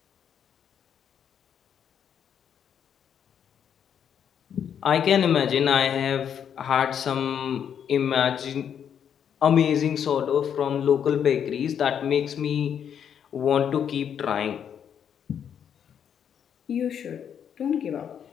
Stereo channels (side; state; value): right; quieter; 8.4 dB